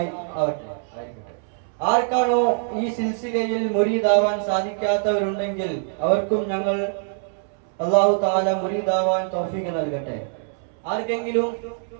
ആവട്ടെ. ആർക്കാണോ ഈ സിൽസിലയിൽ മുരീദാവാൻ സാധിക്കാത്തവരുണ്ടെങ്കിൽ അവർക്കും ഞങ്ങൾ അല്ലാഹു തആല മുരീദാവാൻ തൗഫീഖ് നൽകട്ടെ. ആർക്കെങ്കിലും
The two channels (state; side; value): silent; left; 63 dB below the other